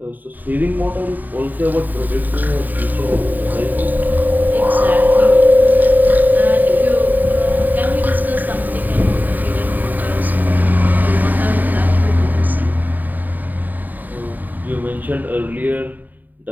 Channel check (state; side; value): late; left; 0.087 ms